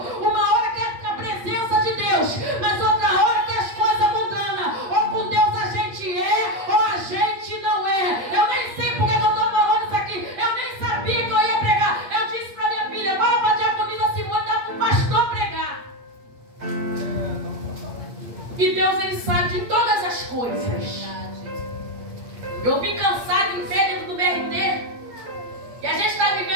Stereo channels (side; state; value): left; late; 8.6 ms